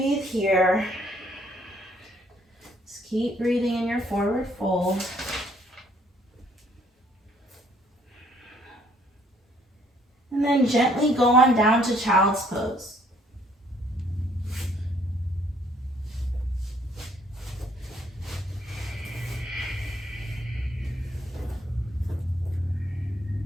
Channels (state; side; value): normal; both; correlation 0.64